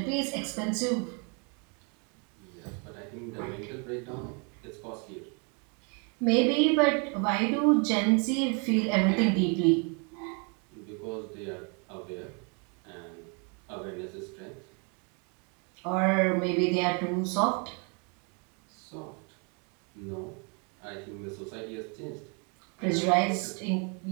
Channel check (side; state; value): left; quieter; 35.5 dB